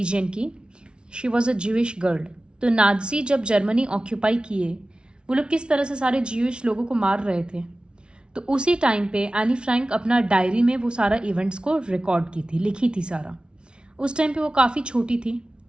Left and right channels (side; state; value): left; late; 0.056 ms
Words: की। She was a Jewish girl. तो नाजी जब जर्मनी ऑक्यूपाई किए, वो लोग किस तरह से सारे ज्यूइश लोगों को मार रहे थे, तो उसी टाइम पे एनी फ्रैंक अपना डायरी में वो सारा इवेंट्स को रिकॉर्ड की थी, लिखी थी सारा। उस टाइम पे वो काफ़ी छोटी थी।